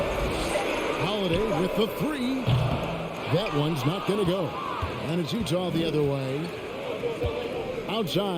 Holiday with the 3. That one's not going to go. And it's Utah the other way.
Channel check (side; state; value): both; identical; correlation 1.00